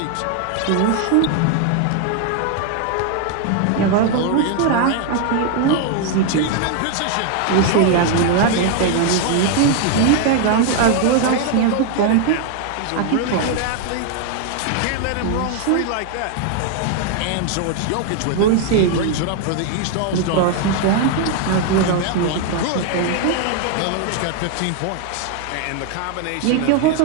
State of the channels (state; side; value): different; both; correlation 0.00